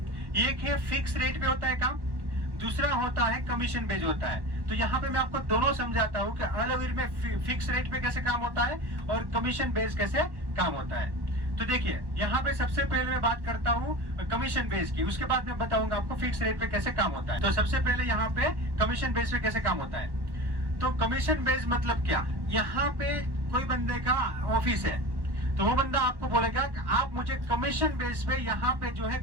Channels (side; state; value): left; late; 1.1 ms